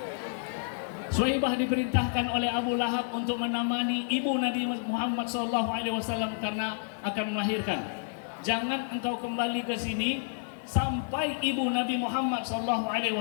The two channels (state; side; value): silent; right; digital silence